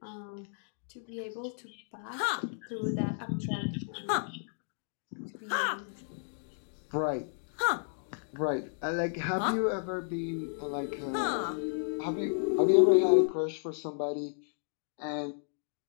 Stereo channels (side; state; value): right; silent; digital silence